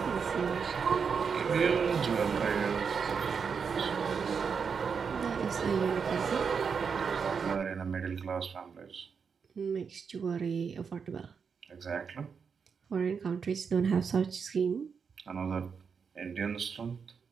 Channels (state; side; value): quieter; left; 6.1 dB